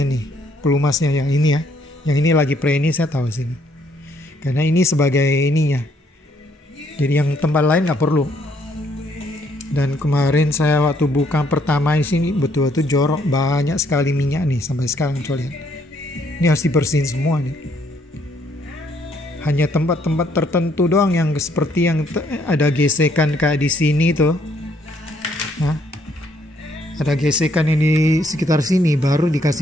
nih, pelumasnya yang ini ya. Yang ini lagi pre ini saya taruh sini. Karena ini sebagai ininya. Jadi yang tempat lain nggak perlu. Dan kemarin saya waktu buka pertama di sini betul-betul jorok, banyak sekali minyak nih sampai sekarang coba lihat. Ini harus dibersihin semua nih. Hanya tempat-tempat tertentu doang yang seperti yang ada gesekan kayak di sini tuh. Nah, ada gesekan ini sekitar sini baru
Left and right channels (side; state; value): both; normal; correlation 0.69